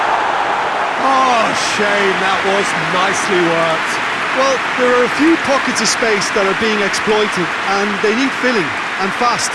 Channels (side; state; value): both; identical; correlation 1.00